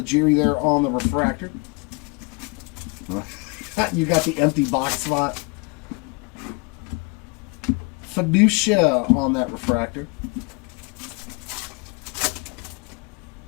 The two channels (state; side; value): quieter; right; 30.3 dB